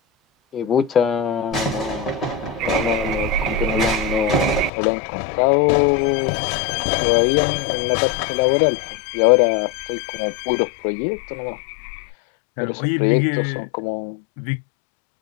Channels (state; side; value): drops out; right; at 4.7 s